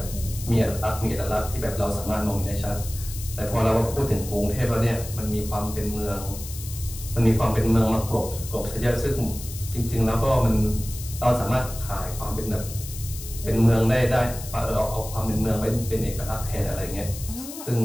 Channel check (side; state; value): left; noise; hiss, 12 dB below the sound